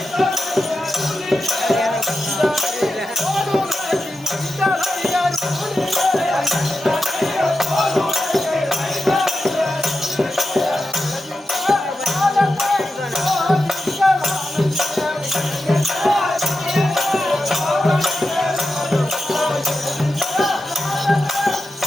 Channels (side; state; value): both; normal; correlation 0.90